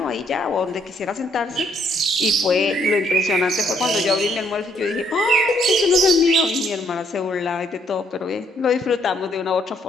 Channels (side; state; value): both; normal; correlation 0.69